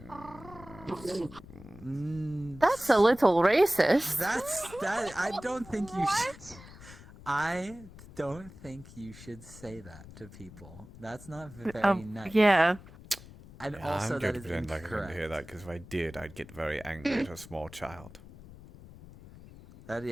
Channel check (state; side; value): noise; left; rumble, 18 dB below the sound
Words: That's a little racist. That. I don't think you should. I don't think you should say that to people. That's not very nice. Yeah. And yeah, also I'm that going to is pretend like I didn't incorrect. hear that because if I did, I'd get very angry at a small child.